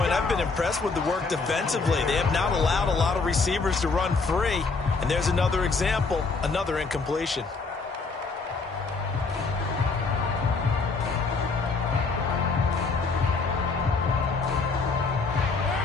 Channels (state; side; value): quieter; right; 4.2 dB